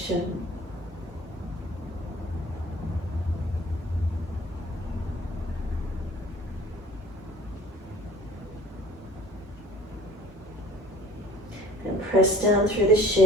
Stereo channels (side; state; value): both; normal; correlation 0.47